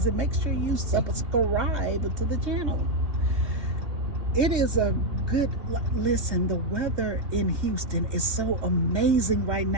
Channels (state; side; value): late; left; 3.3 ms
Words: Make sure you subscribe to the channel. It is a good, listen, the weather in Houston is so amazing right